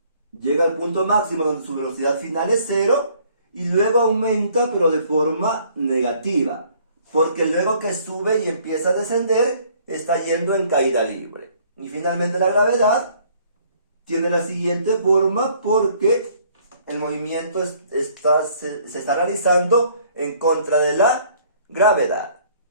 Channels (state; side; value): inverted; both; correlation -0.60